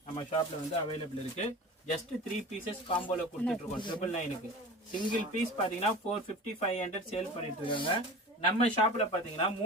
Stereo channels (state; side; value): normal; both; correlation 0.35